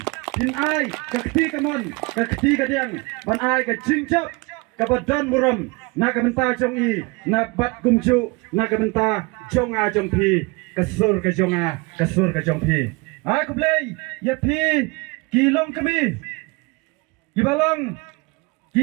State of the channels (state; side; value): quieter; left; 26.8 dB